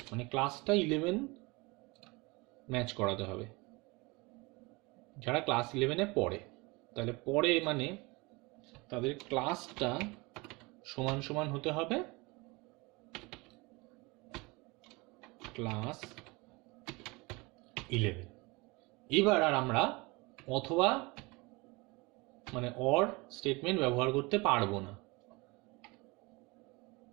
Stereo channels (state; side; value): quieter; left; 25.4 dB